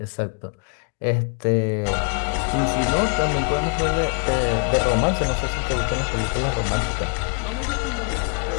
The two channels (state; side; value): quieter; right; 36.7 dB